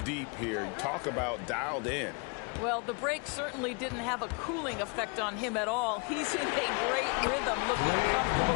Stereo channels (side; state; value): right; quieter; 33.2 dB